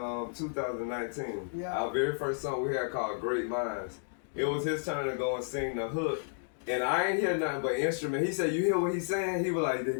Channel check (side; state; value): right; silent; digital silence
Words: 2019, our very first song we had called "Great Minds." It was his turn to go and sing the hook. And I ain't hear nothing but instrument. He said, "You hear what he's saying?" He was like, "They